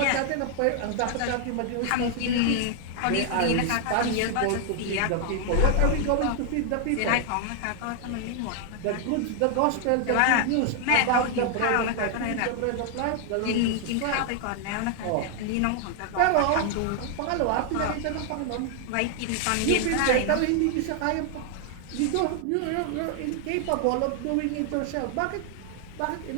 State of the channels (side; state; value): both; different; correlation 0.00